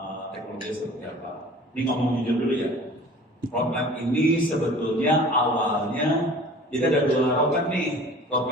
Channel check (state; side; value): normal; both; correlation 0.45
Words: teknologi seperti apa. Ini ngomong jujur dulu ya. Roadmap ini sebetulnya awalnya jadi ada dua roadmap nih,